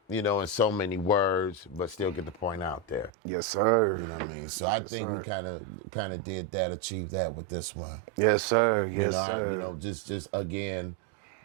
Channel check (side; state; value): left; drops out; at 3.1 s